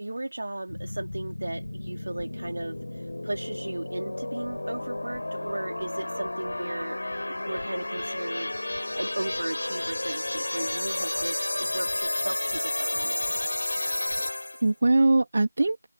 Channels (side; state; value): both; inverted; correlation -0.98